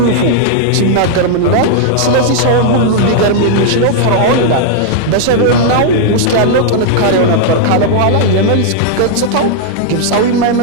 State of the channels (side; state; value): both; different; correlation -0.01